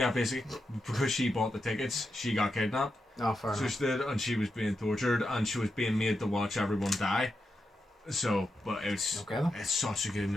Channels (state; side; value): normal; both; correlation 0.87